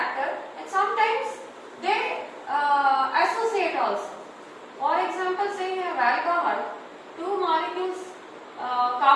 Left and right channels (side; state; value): both; identical; correlation 1.00